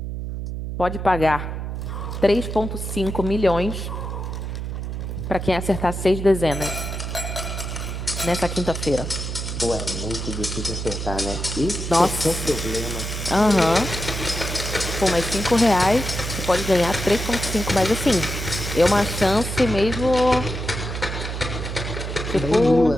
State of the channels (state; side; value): noise; right; hum, 5 dB below the sound